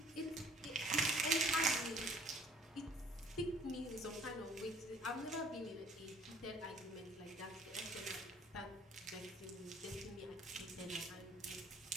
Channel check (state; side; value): normal; both; correlation 0.56